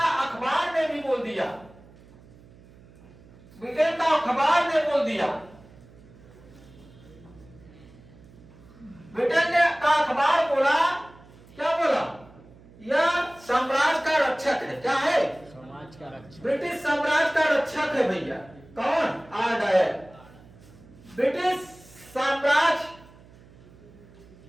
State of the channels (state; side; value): noise; right; hum, 24 dB below the sound